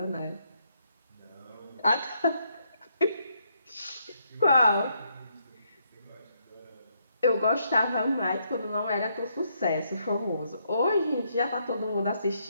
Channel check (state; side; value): inverted; both; correlation -0.75